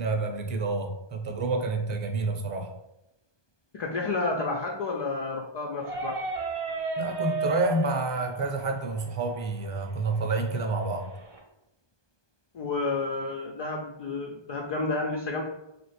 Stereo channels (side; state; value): right; late; 1.2 ms